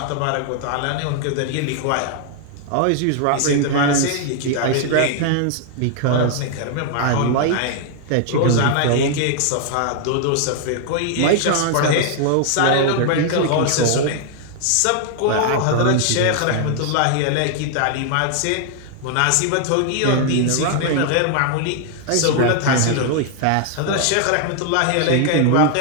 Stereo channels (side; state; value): both; different; correlation 0.00